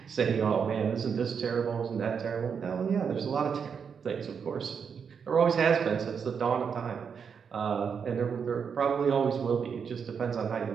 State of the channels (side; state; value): left; quieter; 6.6 dB